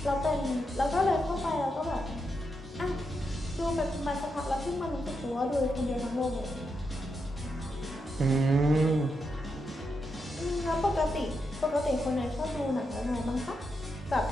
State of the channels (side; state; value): both; normal; correlation 0.84